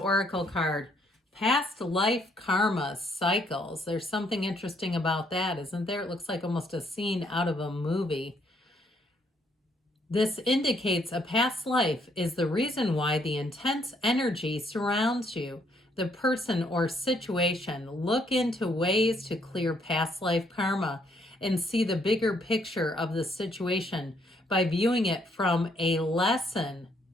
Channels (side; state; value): both; normal; correlation 0.70